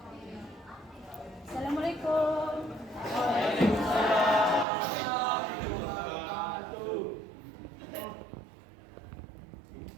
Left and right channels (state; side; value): drops out; left; at 4.7 s